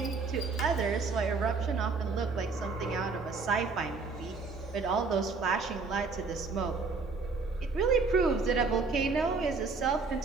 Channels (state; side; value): quieter; left; 4.3 dB